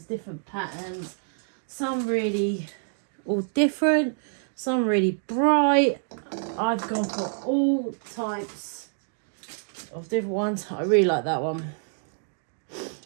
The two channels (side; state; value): left; silent; digital silence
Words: different patterns, some really all different, some really bright. I've gone for all types of different ones. I really like that one.